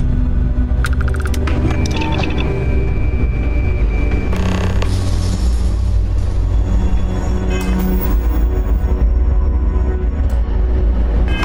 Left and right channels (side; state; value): both; identical; correlation 1.00